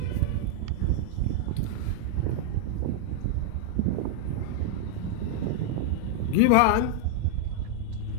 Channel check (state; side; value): different; both; correlation 0.00